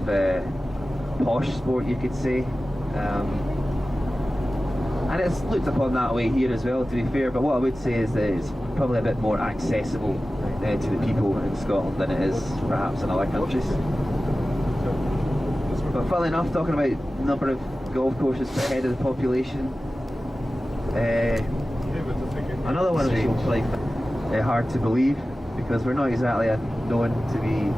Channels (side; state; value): both; normal; correlation 0.95